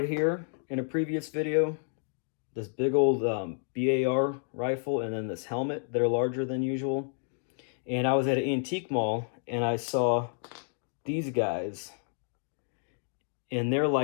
here in a previous video. This big old BAR rifle and then this helmet that are larger than usual. And I was at an antique mall and I saw these guys. And they're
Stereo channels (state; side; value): silent; right; digital silence